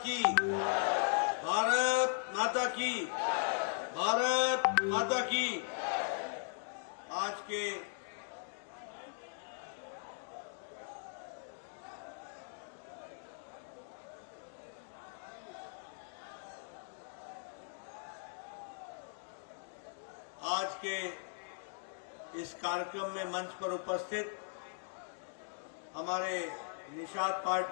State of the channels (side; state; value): right; silent; digital silence